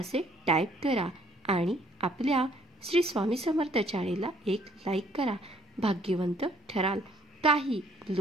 टाईप करा आणि आपल्या श्री स्वामी समर्थ चॅनेलला एक लाईक करा. भाग्यवंत ठराल. काही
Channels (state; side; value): normal; both; correlation 0.62